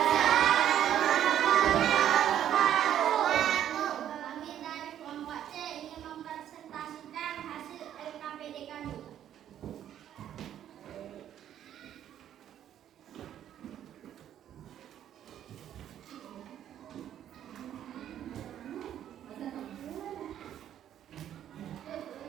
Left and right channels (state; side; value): quieter; left; 10.7 dB